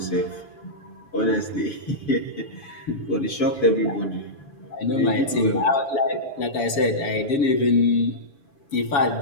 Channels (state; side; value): late; right; 7.1 ms